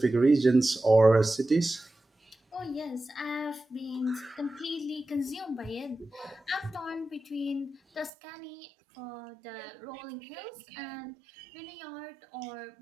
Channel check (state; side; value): drops out; left; at 8.1 s